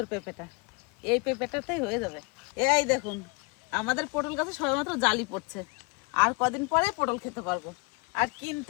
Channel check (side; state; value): right; quieter; 28.3 dB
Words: পেঁপেটা, এই পেঁপেটাতেই হয়ে যাবে। এই দেখুন, আমাদের পটল গাছে সবেমাত্র জালি পড়ছে। আর কদিন পরে পটল খেতে পারবো, আর